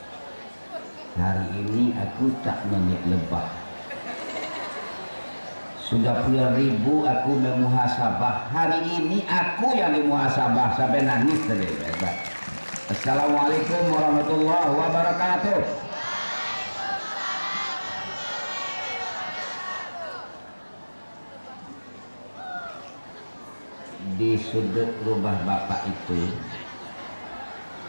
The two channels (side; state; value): both; inverted; correlation -1.00